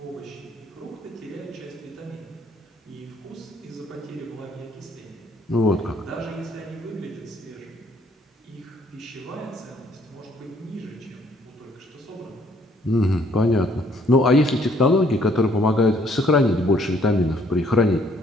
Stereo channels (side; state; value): both; normal; correlation 0.64